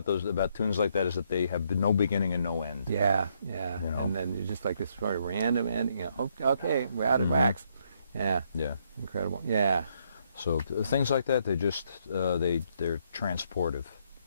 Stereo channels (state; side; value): inverted; both; correlation -0.73